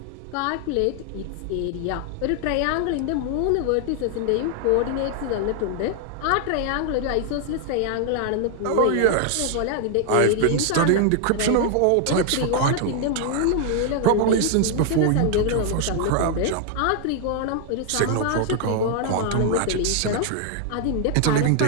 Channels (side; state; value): both; different; correlation 0.00